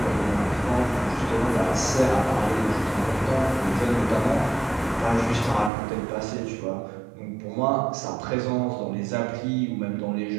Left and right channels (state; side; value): drops out; left; at 5.7 s